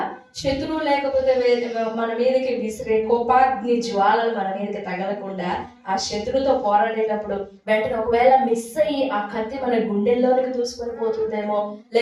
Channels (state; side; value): identical; both; correlation 1.00